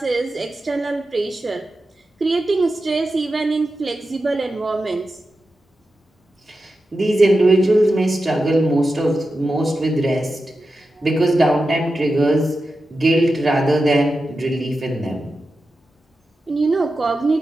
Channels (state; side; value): normal; both; correlation 0.91